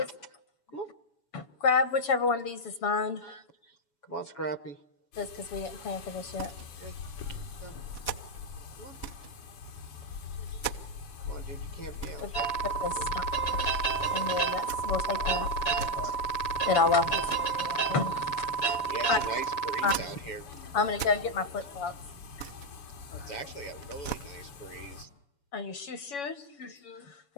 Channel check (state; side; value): late; right; 7.1 ms